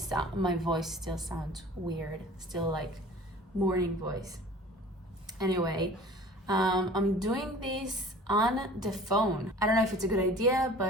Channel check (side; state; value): both; normal; correlation 0.44